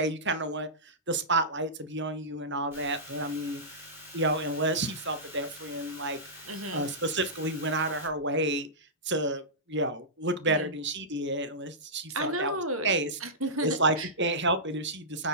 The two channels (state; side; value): normal; both; correlation -0.16